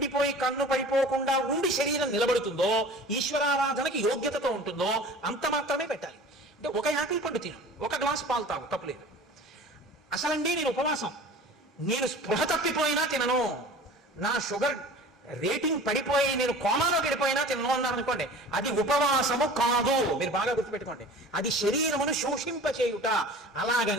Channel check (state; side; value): normal; both; correlation 0.41